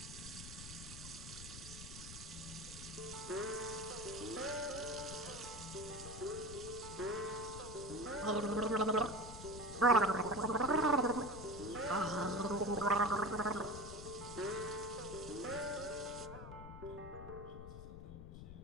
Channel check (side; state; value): left; noise; rumble, 12 dB below the sound